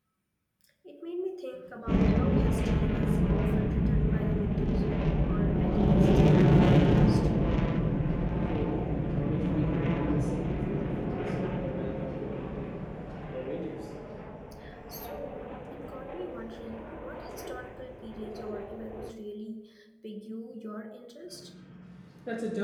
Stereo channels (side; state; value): both; identical; correlation 1.00